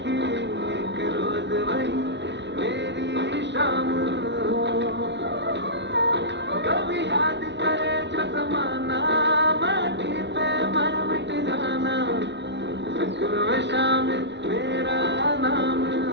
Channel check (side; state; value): left; late; 0.51 ms